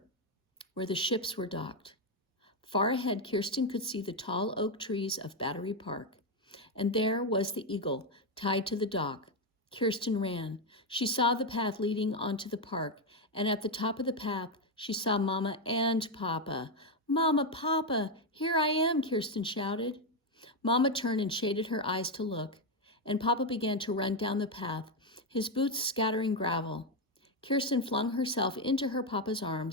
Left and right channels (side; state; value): both; normal; correlation 0.06